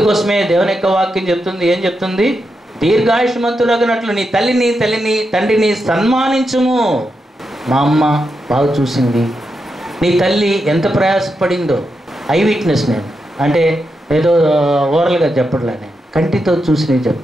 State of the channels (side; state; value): both; normal; correlation 0.86